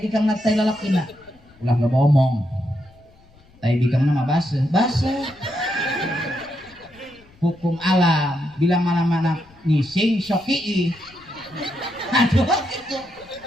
tai lalakina. Ulah enggak ngomong. Tai bikangna mah baseuh. Hukum alam bila mana-mana ngising soki. Aduh gitu.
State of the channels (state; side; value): noise; left; rumble, 28 dB below the sound